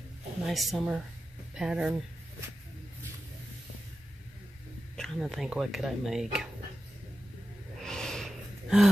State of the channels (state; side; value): normal; both; correlation 0.92